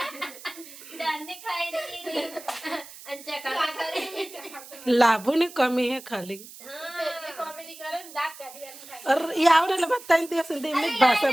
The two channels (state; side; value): noise; right; hiss, 17 dB below the sound